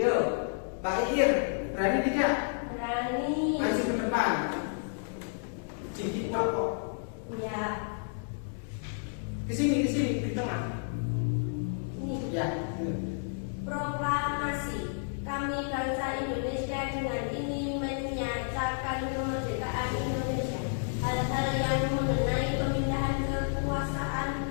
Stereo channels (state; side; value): silent; right; digital silence